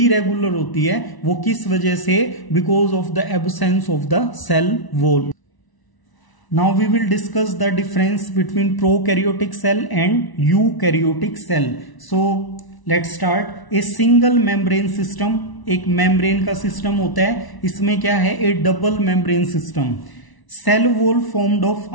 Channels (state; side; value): late; right; 1.0 ms